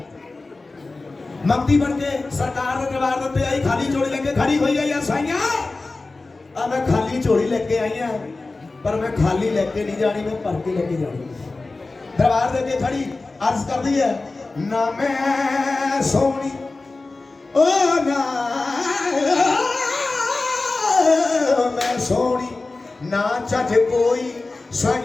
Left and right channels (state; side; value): quieter; right; 3.4 dB